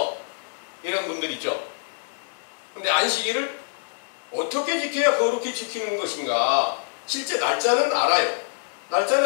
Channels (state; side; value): silent; right; digital silence